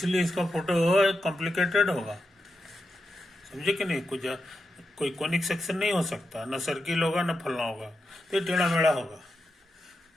इसका फोटो कॉम्प्लिकेटेड होगा। समझे कि नहीं? कोई कोनिक सेक्शन नहीं हो सकता, ना सर्किल होगा ना फलना होगा, तो टेढ़ा मेढ़ा होगा।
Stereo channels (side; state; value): both; normal; correlation 0.88